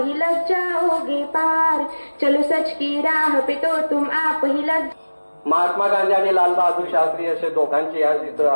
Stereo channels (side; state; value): both; inverted; correlation -1.00